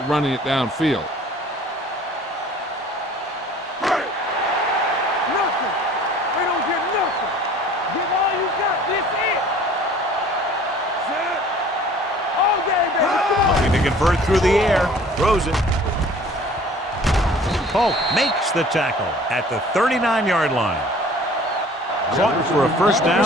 running it downfield. Nothing. They don't get nothing. Give all you got. This it. Set. All game, baby. Looking to convert through the air. Throws it. Polk makes the tackle at the 39-yard line. Caught for a first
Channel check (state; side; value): normal; both; correlation 0.50